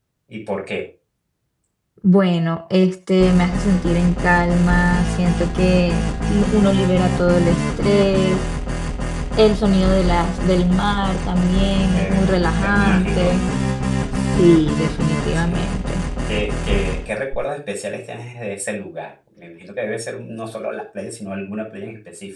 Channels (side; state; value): both; identical; correlation 1.00